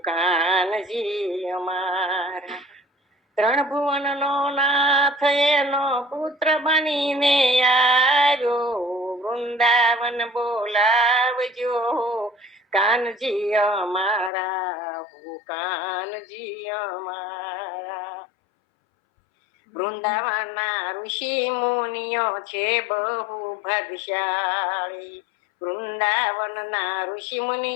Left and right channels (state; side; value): drops out; right; at 14.3 s